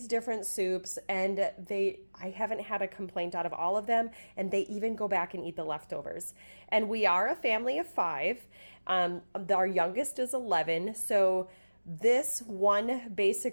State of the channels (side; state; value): both; inverted; correlation -1.00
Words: different soups, and I haven't had a complaint out of all of them, and they even go back and eat the leftovers. And we are a family of 5. Our youngest is 11, so this one